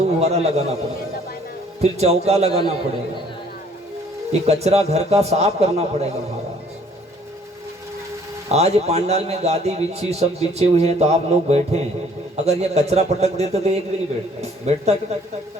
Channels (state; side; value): normal; both; correlation 0.59